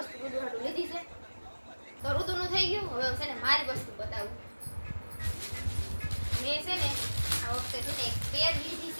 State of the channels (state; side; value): inverted; both; correlation -1.00